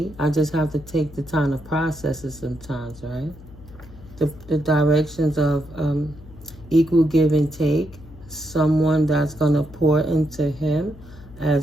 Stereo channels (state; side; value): noise; left; hum, 19 dB below the sound